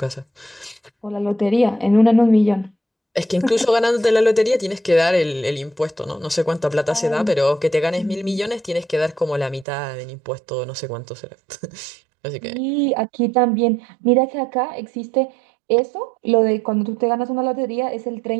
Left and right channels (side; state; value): left; drops out; at 9.7 s